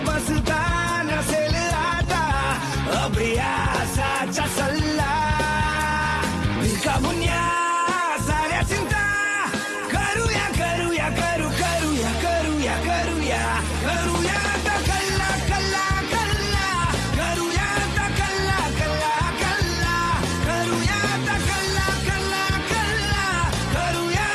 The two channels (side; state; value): both; identical; correlation 1.00